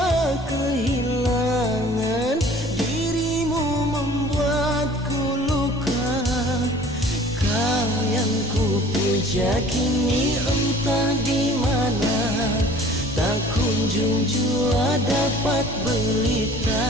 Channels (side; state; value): both; normal; correlation 0.48